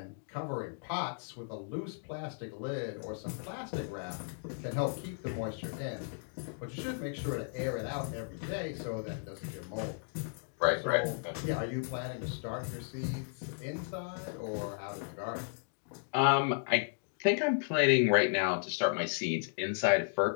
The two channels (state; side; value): silent; right; digital silence